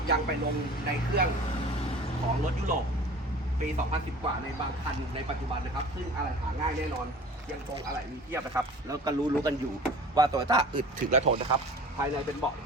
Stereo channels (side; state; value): both; normal; correlation 0.43